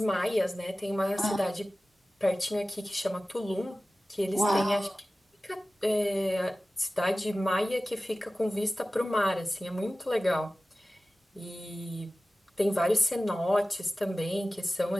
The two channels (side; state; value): both; normal; correlation 0.96